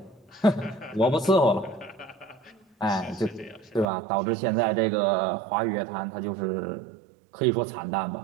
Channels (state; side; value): drops out; left; at 3.9 s